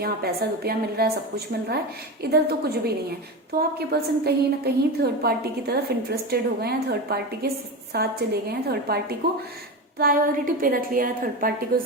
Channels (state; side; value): normal; both; correlation 0.21